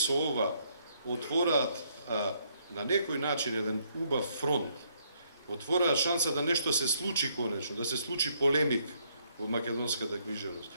ова отвораат на некој начин еден убав фронт отвораа шанса да нешто се случи конечно, да се случи полемик во македонската книжевност,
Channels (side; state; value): both; inverted; correlation -0.70